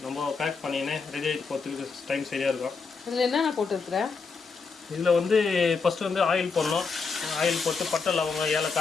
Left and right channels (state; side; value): quieter; right; 4.9 dB